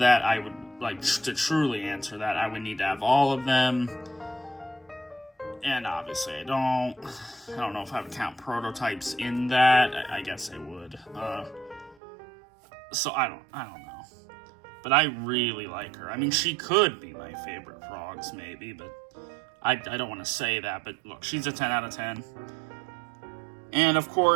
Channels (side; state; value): left; drops out; at 12.0 s